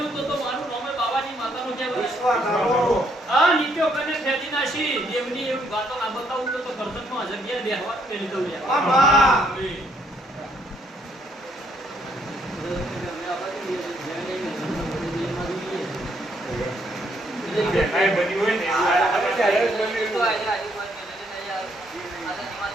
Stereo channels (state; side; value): normal; both; correlation 0.70